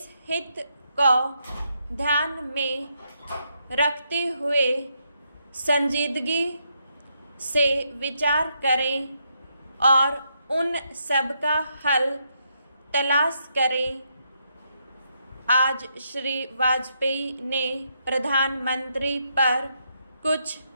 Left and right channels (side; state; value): both; inverted; correlation -0.78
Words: हित को ध्यान में रखते हुए संजीदगी से विचार करें और उन सब का हल तलाश करें। आज श्री वाजपेयी ने प्रधानमंत्री पर कुछ